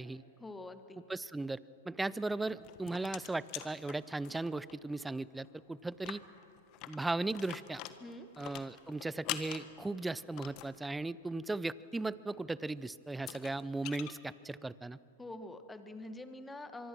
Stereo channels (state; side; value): normal; both; correlation 0.88